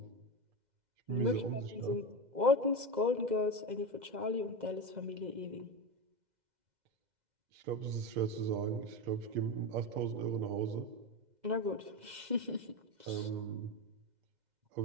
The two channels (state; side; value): late; left; 2.0 ms